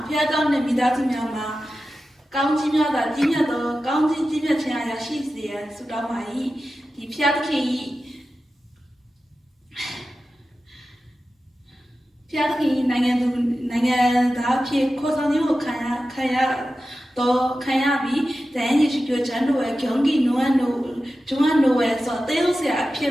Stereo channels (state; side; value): normal; both; correlation 0.93